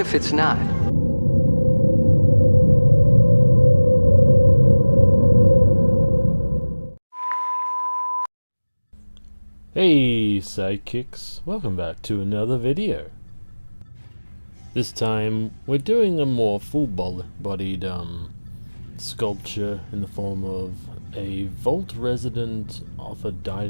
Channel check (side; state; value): both; inverted; correlation -1.00